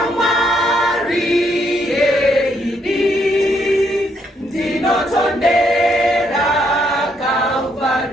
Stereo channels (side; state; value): both; normal; correlation 0.73